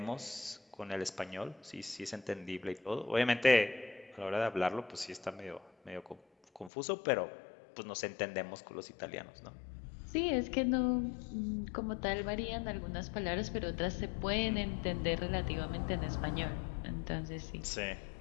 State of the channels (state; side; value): drops out; right; at 6.7 s